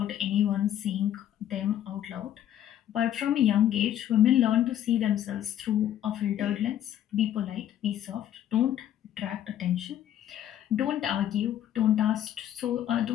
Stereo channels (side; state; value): right; quieter; 11.2 dB